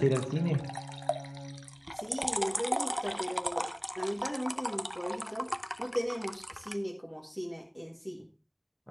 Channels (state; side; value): identical; both; correlation 1.00